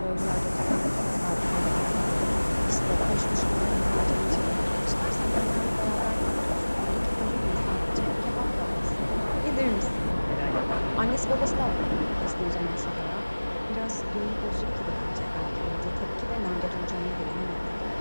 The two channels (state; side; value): inverted; both; correlation -1.00